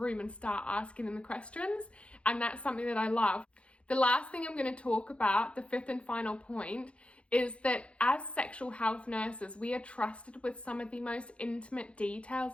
and start asking them the questions, and that's something that I love. The last thing I'm going to talk about, the 5th and final point, is that as sexual health nurses, we are trusted with some of the most intimate details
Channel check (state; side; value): late; right; 0.060 ms